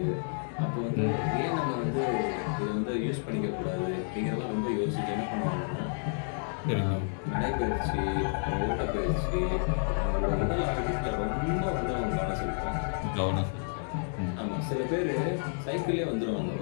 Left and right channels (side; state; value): right; silent; digital silence